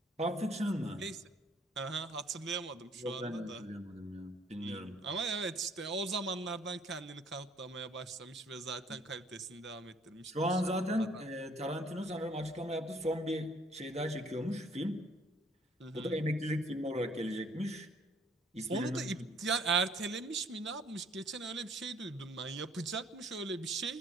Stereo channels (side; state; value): both; normal; correlation 0.60